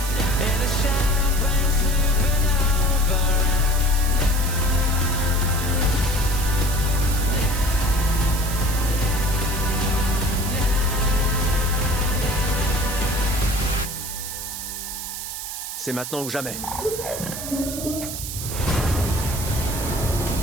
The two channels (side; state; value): right; noise; hiss, 7 dB below the sound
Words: C'est maintenant ou jamais.